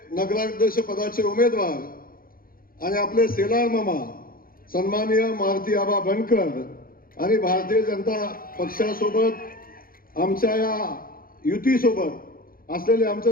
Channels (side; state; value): right; late; 0.42 ms